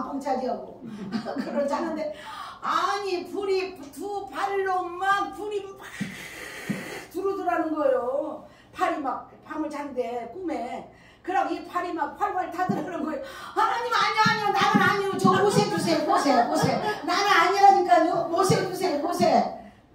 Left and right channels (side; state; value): both; identical; correlation 1.00